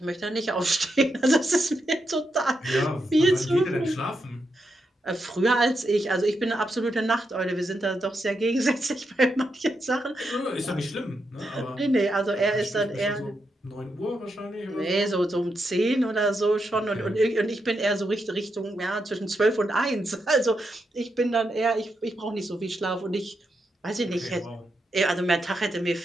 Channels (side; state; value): both; normal; correlation 0.83